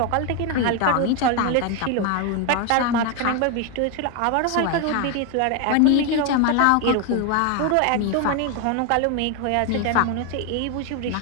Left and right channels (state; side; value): different; both; correlation 0.01